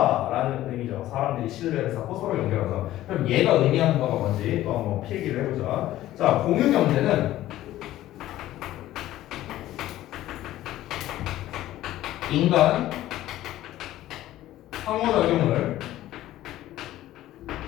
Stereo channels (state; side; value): quieter; right; 14.5 dB